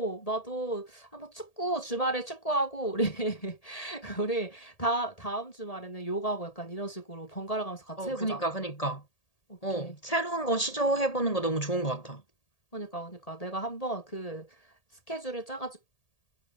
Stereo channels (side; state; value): right; late; 1.8 ms